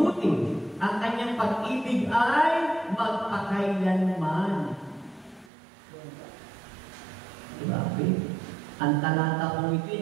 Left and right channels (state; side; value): drops out; left; at 5.5 s